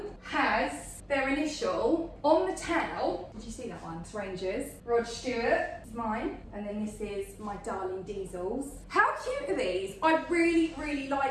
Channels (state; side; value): identical; both; correlation 1.00